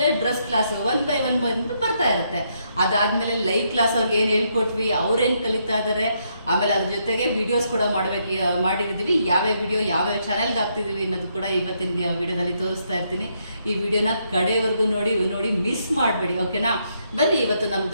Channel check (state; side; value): inverted; both; correlation -0.76